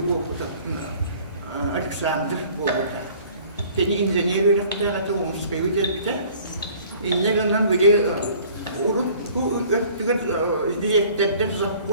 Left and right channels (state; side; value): inverted; both; correlation -0.52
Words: Alexander boleh. Jadi engineer rakta atau umskai kita ini kan video urut tu tiga dia terder